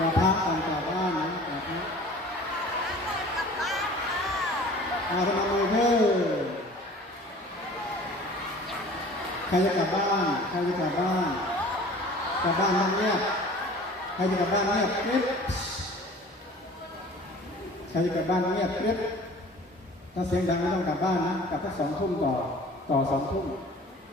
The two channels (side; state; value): both; normal; correlation 0.45